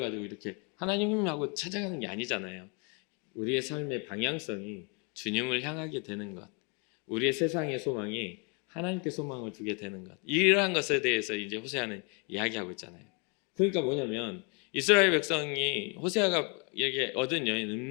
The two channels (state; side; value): quieter; right; 34.5 dB